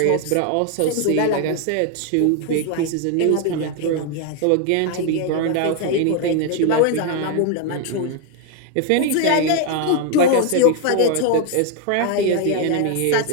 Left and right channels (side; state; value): both; different; correlation 0.01